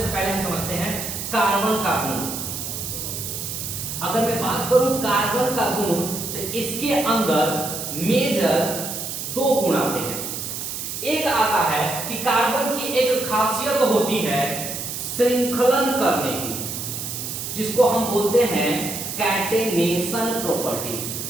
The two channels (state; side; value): noise; right; hiss, 5 dB below the sound